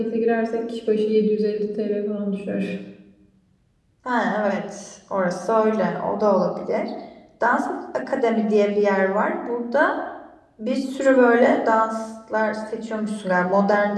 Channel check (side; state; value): both; identical; correlation 1.00